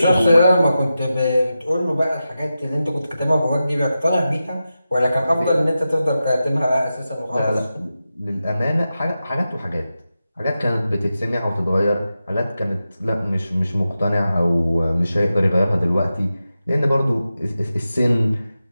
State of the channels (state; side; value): inverted; both; correlation -0.91